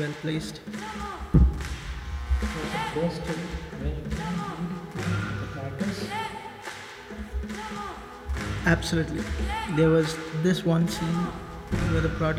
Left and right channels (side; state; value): both; identical; correlation 1.00